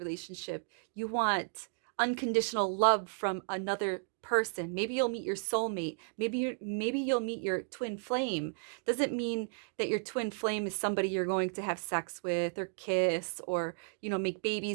You want unconditional love from another person. Maybe you'll meet your soulmate. Maybe you'll meet your twin flame. Doesn't mean that your twin flame is somebody you're going to have sex with or kiss or, make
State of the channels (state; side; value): silent; left; 55 dB below the other